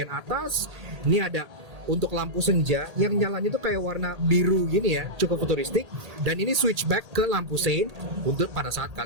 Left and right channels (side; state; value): left; late; 1.8 ms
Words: atas ini ada untuk lampu senja yang nyalanya itu kayak warna biru gini ya, cukup futuristik. Dan ini switchback ke lampu sein untuk pada saat